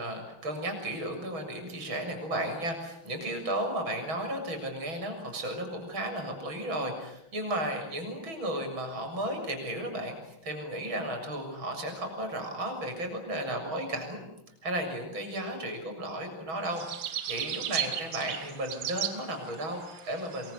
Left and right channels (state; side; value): late; left; 6.2 ms